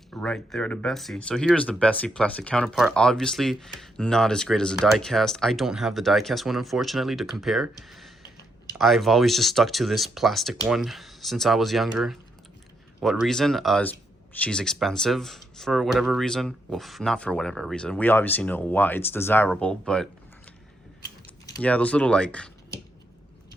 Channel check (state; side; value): normal; both; correlation 0.78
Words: right there to Bessie. So here's the Bessie plastic counterpart. Obviously not as great as a die cast. I don't have the die cast one, unfortunately, to compare. I've always just stuck to this plastic one since I was younger. What reason? She's expensive for whatever reason. Well, not for whatever reason. We obviously know why. It's desirable, but yeah, those little like